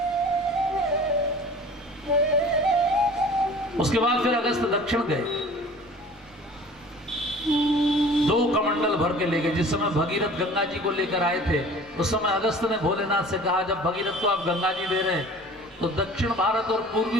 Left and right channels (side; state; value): both; normal; correlation 0.45